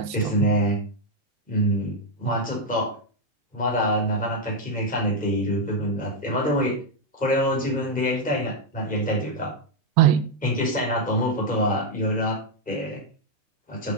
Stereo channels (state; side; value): normal; both; correlation 0.00